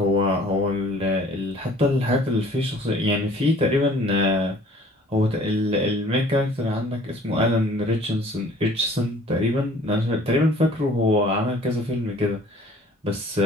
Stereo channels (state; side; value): normal; both; correlation 0.53